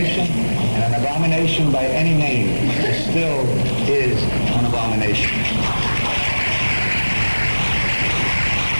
and an abomination by any name still is an abomination.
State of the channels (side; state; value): both; inverted; correlation -1.00